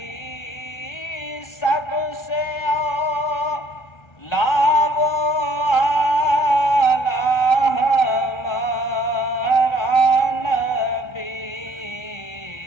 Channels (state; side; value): late; right; 1.3 ms